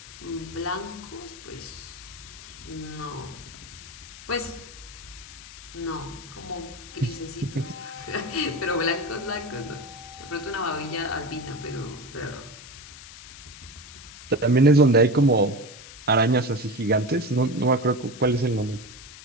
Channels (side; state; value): left; noise; hiss, 16 dB below the sound